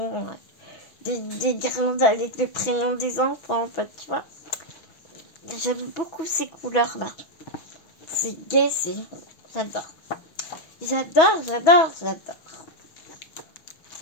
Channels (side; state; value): right; late; 6.2 ms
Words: Des guirlandes avec le prénom des enfants, en fait, tu vois. J'aime beaucoup ces couleurs-là. C'est gai, j'adore. J'adore.